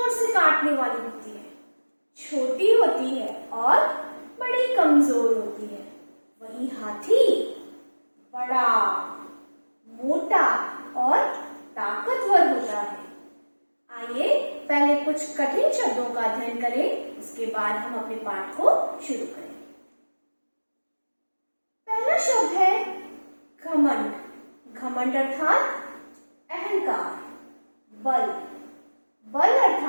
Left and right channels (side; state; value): both; inverted; correlation -1.00